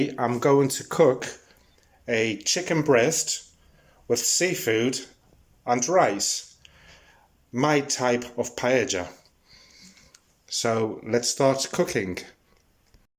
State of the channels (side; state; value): both; identical; correlation 1.00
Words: I'm going to cook a chicken breast with seafood and rice, my type of paella. So let's start cooking.